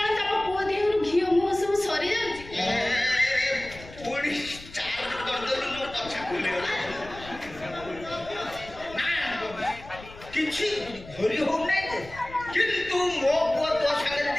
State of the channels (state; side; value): noise; left; rumble, 17 dB below the sound